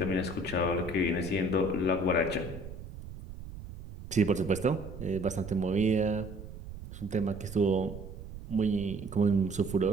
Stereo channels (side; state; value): right; noise; rumble, 12 dB below the sound